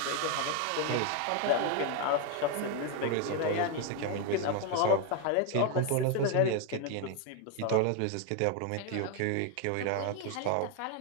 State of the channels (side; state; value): both; different; correlation 0.01